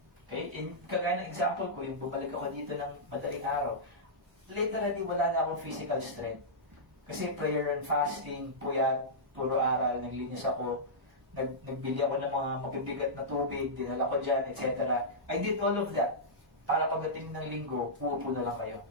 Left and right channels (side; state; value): both; normal; correlation -0.13